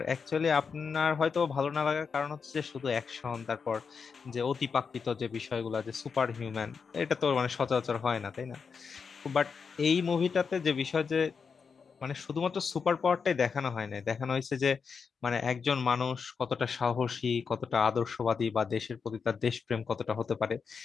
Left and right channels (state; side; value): quieter; right; 5.7 dB